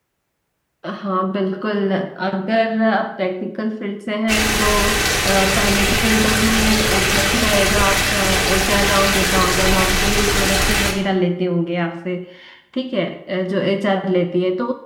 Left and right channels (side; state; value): both; identical; correlation 1.00